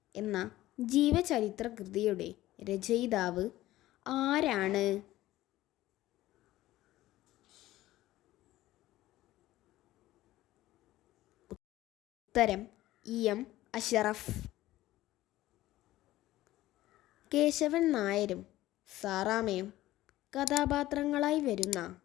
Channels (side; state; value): right; quieter; 15.8 dB